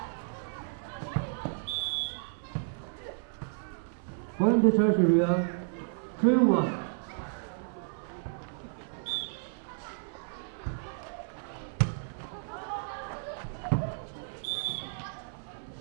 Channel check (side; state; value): left; silent; 56 dB below the other